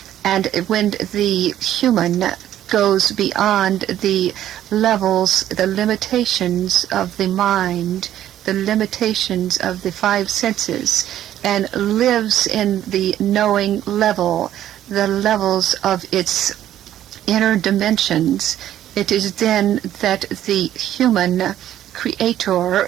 And when the human goes beyond the levels, the limitations of the mind, the limitations of the five senses, and lives in the knowing level, the levels of its inner dimensions, it is then that the human creator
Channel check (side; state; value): left; quieter; 11.9 dB